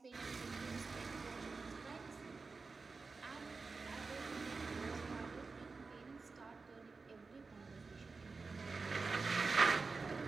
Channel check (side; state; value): left; quieter; 4.2 dB